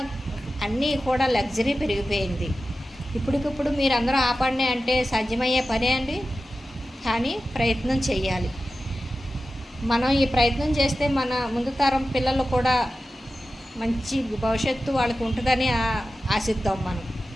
అన్నీ కూడా లగ్జరీ పెరిగిపోయింది. ఇప్పటికిప్పుడు మీరందరూ ఆపండి అంటే సాధ్యమయ్యే పనే అండి. కానీ ప్రయత్నం చేయాలి. మనం ఈ ప్రయత్నం చేస్తే మన ముందు తరం పిల్లలు కూడా మంచి భవిష్యత్తు వాళ్ళకి ఉంటుందని ఆశిద్దాం.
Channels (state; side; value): normal; both; correlation 0.93